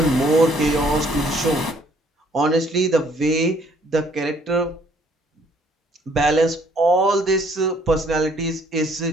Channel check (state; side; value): normal; both; correlation 0.62